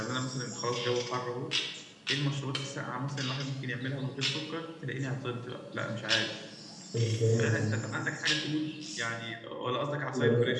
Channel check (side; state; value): both; identical; correlation 1.00